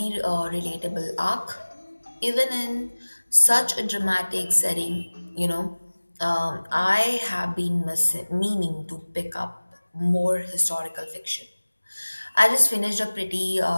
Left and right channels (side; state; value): both; inverted; correlation -1.00